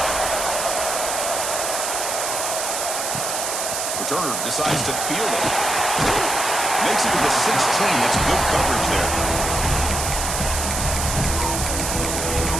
Returner decides to field it. Makes it to the 16. That's good coverage there.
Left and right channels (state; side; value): noise; right; hiss, 2 dB below the sound